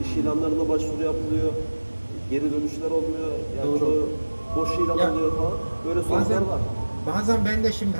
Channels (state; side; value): inverted; both; correlation -1.00